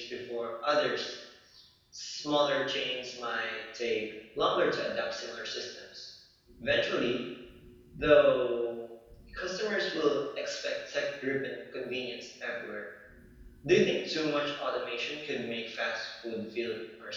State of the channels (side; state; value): both; identical; correlation 1.00